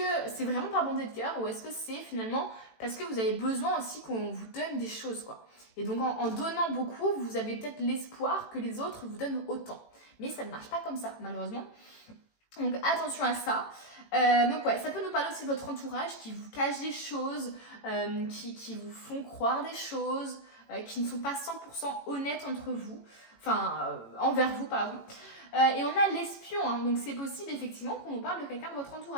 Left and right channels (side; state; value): right; late; 18 ms